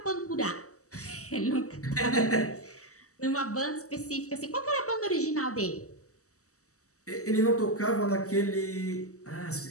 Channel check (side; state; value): right; late; 0.66 ms